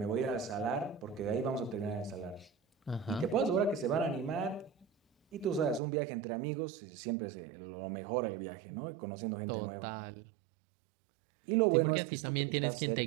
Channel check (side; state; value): left; drops out; at 5.8 s